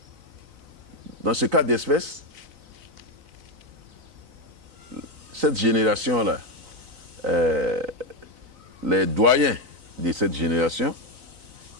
Dans ce cas d'espèce, cette génération-là, les doyens de cette génération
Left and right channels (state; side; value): late; left; 3.9 ms